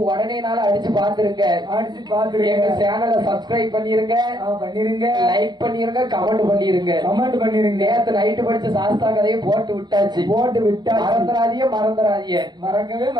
உடனே நாள் அடிச்சு பாத்துருங்க. எங்க சேனலை சப்ஸ்கிரைப் பண்ணிருங்க, லைக் பண்ணிருங்க, கமெண்ட் பண்ணிருங்க. நேத்து நைட்டு படிச்ச சாஸ்தா கதையை போட்டு விட்டாச்சு. மறந்துடாதீங்க, மறக்கவே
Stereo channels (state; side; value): late; left; 0.21 ms